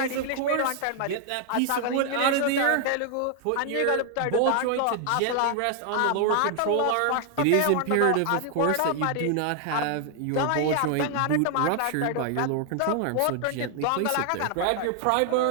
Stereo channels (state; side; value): different; both; correlation 0.00